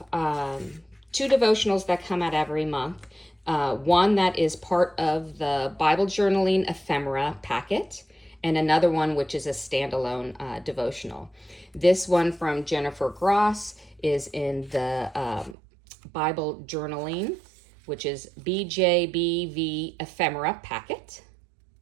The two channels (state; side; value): drops out; left; at 15.6 s